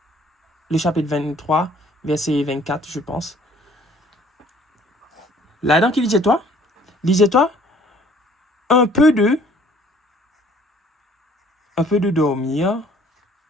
le chapitre 23, verset 24, je pense. Là-dedans, qui lisait-toi? Lisez-toi un peu de dormir,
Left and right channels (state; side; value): normal; both; correlation 0.56